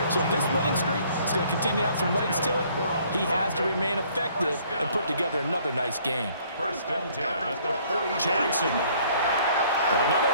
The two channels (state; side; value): inverted; both; correlation -0.60